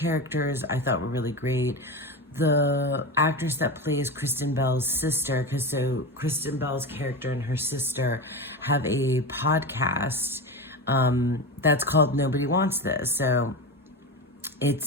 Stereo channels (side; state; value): both; normal; correlation 0.22